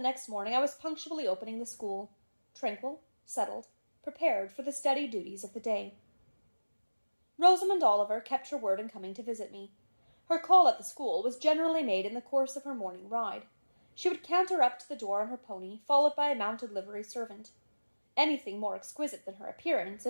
morning I was punctually opening the school, tranquil, settled, prepared for the steady duties of the day. Rosamond Oliver kept her word in coming to visit me. Her call at the school was generally made in the course of her morning ride. She would canter up to the door on her pony, followed by a mounted livery servant. Anything more exquisite than her appearance,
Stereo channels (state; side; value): inverted; both; correlation -1.00